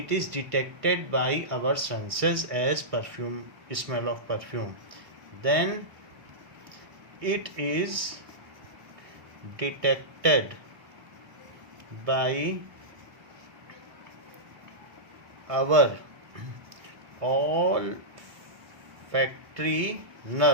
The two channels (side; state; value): left; late; 1.6 ms